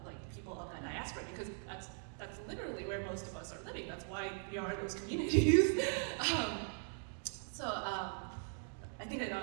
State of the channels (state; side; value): silent; left; 51 dB below the other